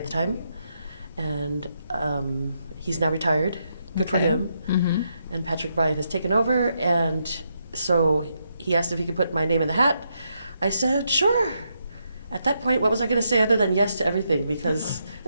the time, and he's now retired. Good for Okay. him. Mm-hmm. And Patrick Bryan has taken over, and so he asked if he could put my name in the hat. I said, sure. At that point, what was I going to say other than yes to everything, because there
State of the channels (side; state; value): both; inverted; correlation -0.80